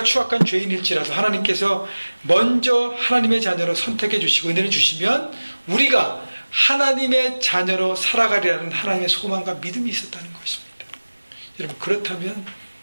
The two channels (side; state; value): both; inverted; correlation -1.00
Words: 추악한 죄인일지라도 하나님께서 먼저 하나님의 자녀로 선택해 주시고 은혜를 주시면 우리가 하나님의 자녀로 살아가리라는 하나님의 소망과 믿음이 있었다는 것입니다. 여러분, 그렇다면